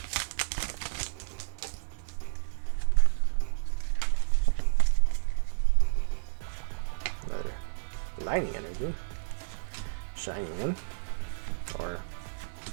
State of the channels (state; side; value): silent; left; digital silence